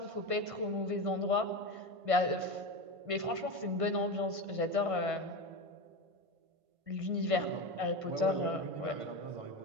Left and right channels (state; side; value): late; left; 1.5 ms